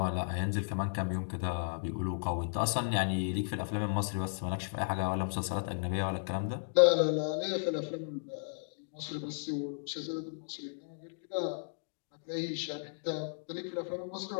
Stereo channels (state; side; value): silent; right; digital silence